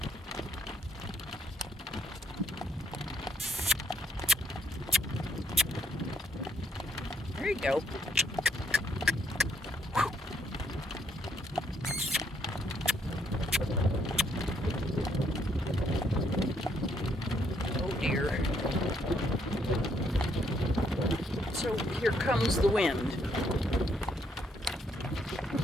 There you go. Oh dear. So here comes the wind.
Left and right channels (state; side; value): normal; both; correlation 0.71